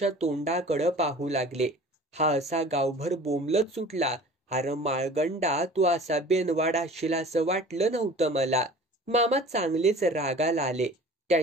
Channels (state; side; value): normal; both; correlation 0.44